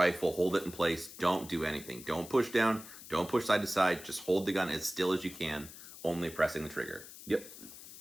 hold it in place. Don't do anything. Don't push down. Don't push side to side. Just hold the gun as still as you can, only pressing the trigger. Yep.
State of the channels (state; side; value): noise; left; hiss, 15 dB below the sound